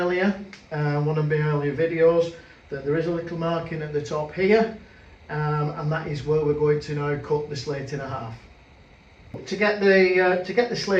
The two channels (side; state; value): both; identical; correlation 1.00